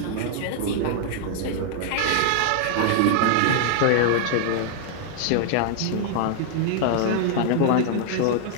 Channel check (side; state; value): both; different; correlation 0.00